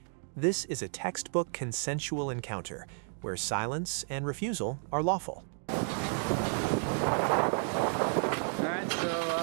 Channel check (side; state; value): left; silent; 55 dB below the other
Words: This is a textbook consensual encounter, where silence and refusal are lawful. Alright,